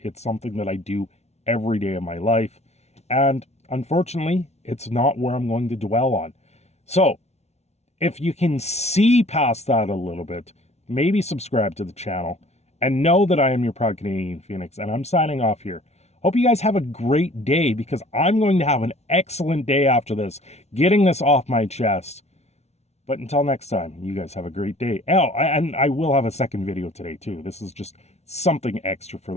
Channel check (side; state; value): right; late; 0.31 ms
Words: something that I do every day of my life, and unfortunately, it's not where I'm going to dwell on. So, if you can see past that a little bit, maybe subscribe to the channel, and know that I am your proud Canadian Phoenix, and I'm signing off here. Hope you guys have a great day, because I'm going to have an excellent day after this, getting this off my chest. But until next time, you guys have a great day. Oh, and I will have a second video today, too. This is just something extra